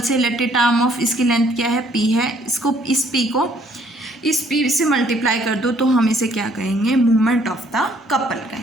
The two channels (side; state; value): both; normal; correlation 0.63